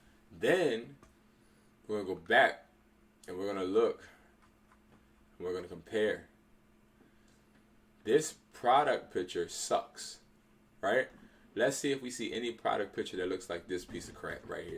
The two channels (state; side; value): identical; both; correlation 1.00